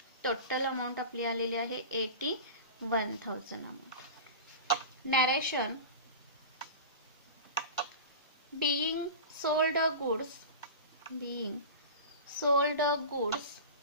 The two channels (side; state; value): both; inverted; correlation -0.31